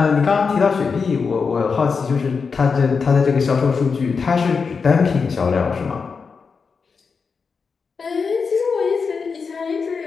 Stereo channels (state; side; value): quieter; right; 5.3 dB